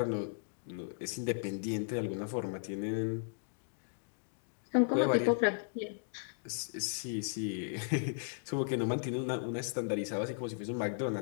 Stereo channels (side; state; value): right; silent; digital silence